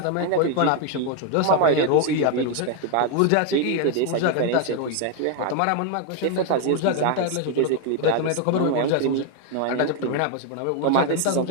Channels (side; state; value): both; different; correlation 0.00